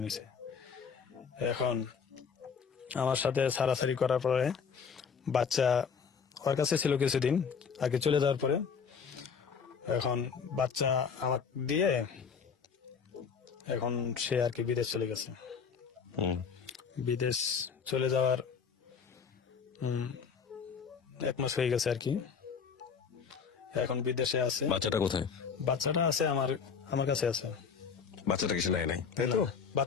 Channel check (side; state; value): right; quieter; 6.3 dB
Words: নিছে। এখন আমার সাথে সারাসারি করার পরে বাচ্চা ওর কাছে ছিল কিছুদিন আগে চলে যাওয়ার পরে, এখন বাচ্চা আমার দিয়ে এখন সে আর কি বিদেশ চলে গেছে। হুম বিদেশ চলে যাওয়ার 1 মাস হয়ে গেছে আর কি, এখন বিদেশে আছে। বাচ্চাটা কোথায়? বাচ্চাটা আছে আমার কাছে আছে। বাচ্চাটা কিছু নেয় নাই তাই তো?